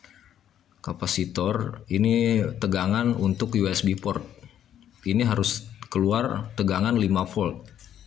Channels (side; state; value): right; quieter; 10.4 dB